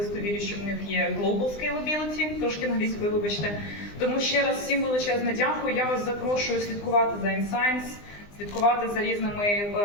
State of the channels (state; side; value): late; right; 20 ms